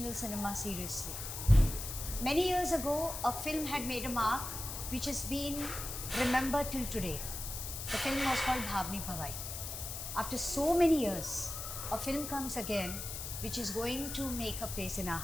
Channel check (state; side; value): noise; left; hiss, 6 dB below the sound